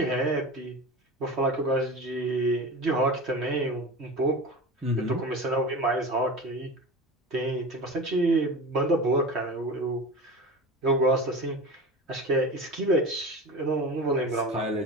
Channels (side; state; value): both; normal; correlation 0.30